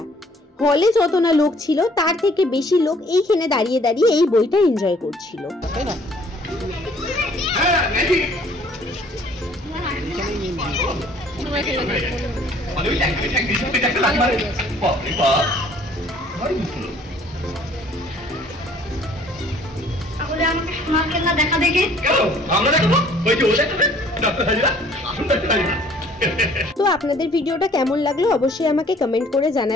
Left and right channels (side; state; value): both; normal; correlation 0.57